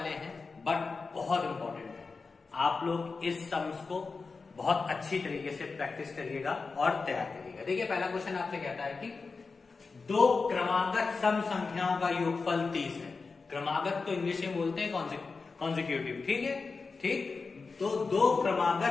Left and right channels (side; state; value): right; quieter; 4.4 dB